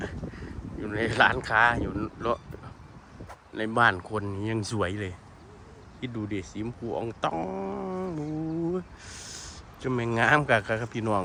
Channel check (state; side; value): identical; both; correlation 1.00